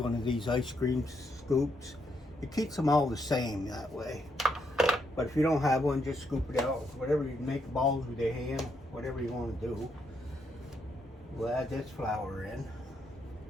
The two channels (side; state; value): both; normal; correlation 0.77